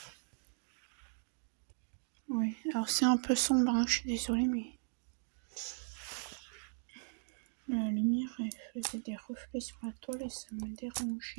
Oui, alors c'est un peu sombre, hein, je suis désolée, mais. La lumière, elle faisait des reflets sur la toile et ça me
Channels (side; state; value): left; silent; digital silence